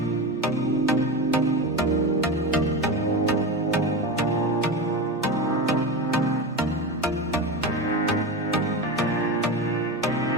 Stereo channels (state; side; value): normal; both; correlation 0.22